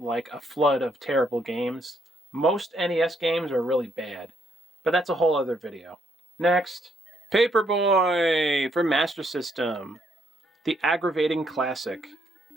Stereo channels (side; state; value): both; normal; correlation 0.72